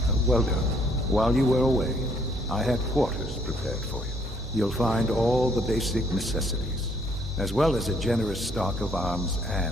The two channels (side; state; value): both; normal; correlation 0.66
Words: Well done. While you were away, I had quarters prepared for you. You'll find all the basic necessities, as well as a generous stock of arms